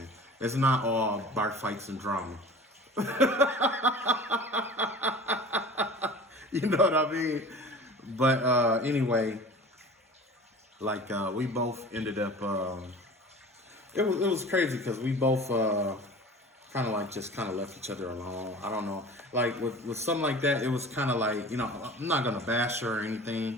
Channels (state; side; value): normal; both; correlation 0.40